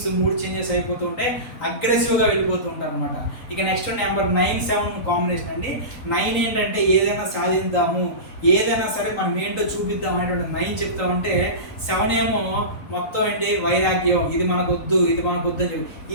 మూడ్ చేంజెస్ అయిపోతూ ఉంటాయి, అగ్రెసివ్గా వెళ్ళిపోతూ ఉంటారు అనమాట. ఇక నెక్స్ట్ నెంబర్ 9-7 కాంబినేషన్ అండి. 9 ఏంటంటే ఏదైనా సాధిద్దాము, ఏదైనా సరే మనం ఏంటో చూపిద్దాం అనేటువంటి 9 చెప్తా ఉంటే, 7 ఏమో మొత్తం ఏంటి వైరాగ్యం, ఇది మనకు వద్దు, ఇది మనకు వద్దు అని చెప్పి.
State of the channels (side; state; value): right; late; 3.9 ms